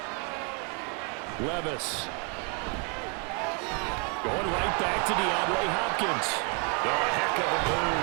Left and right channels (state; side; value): quieter; left; 36.9 dB